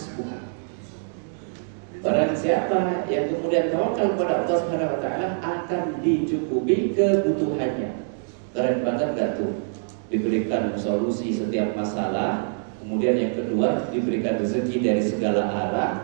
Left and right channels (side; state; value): left; silent; digital silence